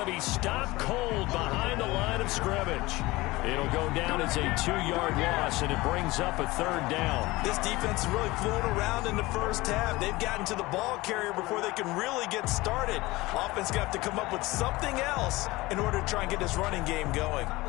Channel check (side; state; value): right; quieter; 20.5 dB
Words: be stopped cold behind the line of scrimmage. It'll go down as a 2-yard loss, and it brings up a 3rd down. This defense has really flown around in the first half. They've gotten to the ball carrier before they can really get started. Offense got to come up with something else in order to try and get this running game going.